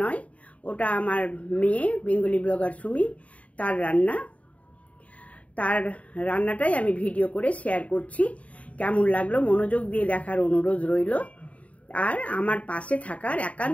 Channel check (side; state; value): right; late; 0.067 ms